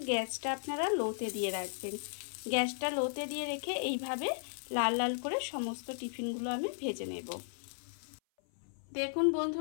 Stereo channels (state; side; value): silent; right; 54 dB below the other